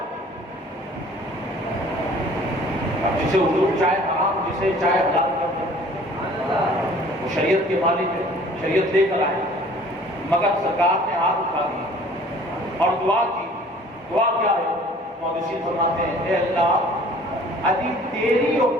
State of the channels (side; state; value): both; normal; correlation 0.52